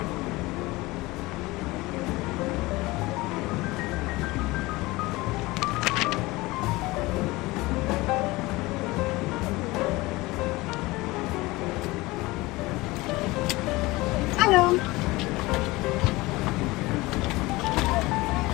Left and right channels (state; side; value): quieter; right; 21.1 dB